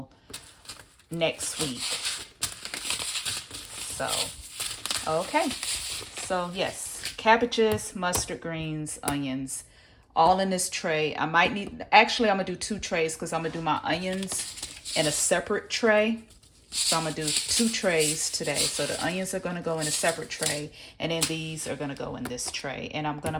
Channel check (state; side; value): identical; both; correlation 1.00